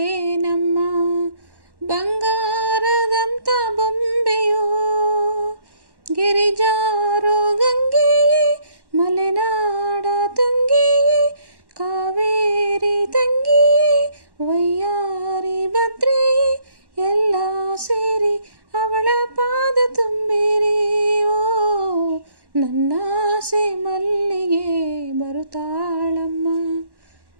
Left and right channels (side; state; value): left; late; 1.1 ms